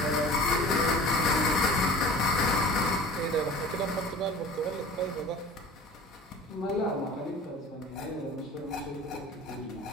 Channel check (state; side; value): normal; both; correlation 0.41